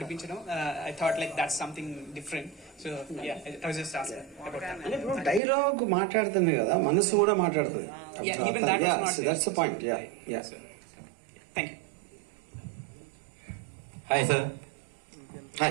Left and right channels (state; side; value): drops out; left; at 5.4 s